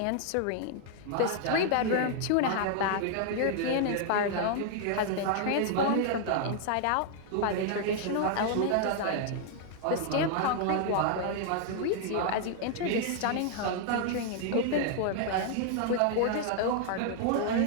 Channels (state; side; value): different; both; correlation 0.00